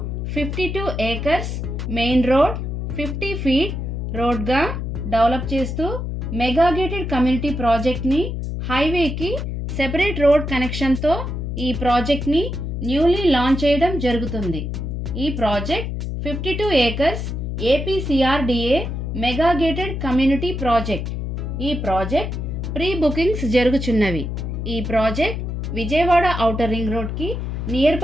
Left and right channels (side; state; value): left; noise; hum, 4 dB below the sound